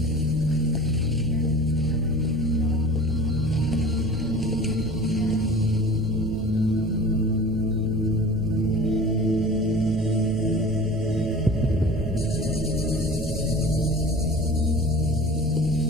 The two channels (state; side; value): noise; right; hum, 10 dB below the sound